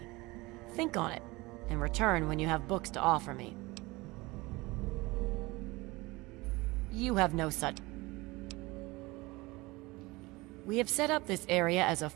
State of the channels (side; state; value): left; quieter; 22.3 dB